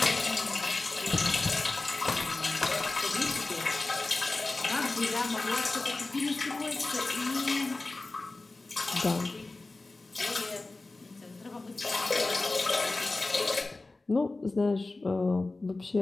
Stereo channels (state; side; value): quieter; right; 3.3 dB